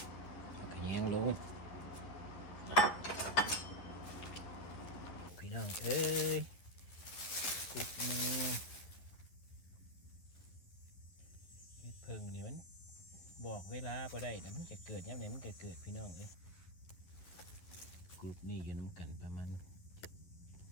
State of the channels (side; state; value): right; late; 11 ms